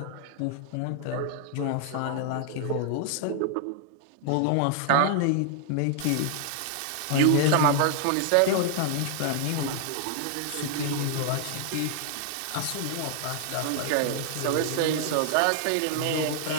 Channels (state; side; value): different; both; correlation 0.00